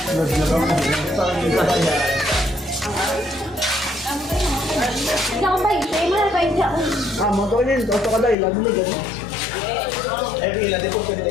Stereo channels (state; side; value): drops out; right; at 8.3 s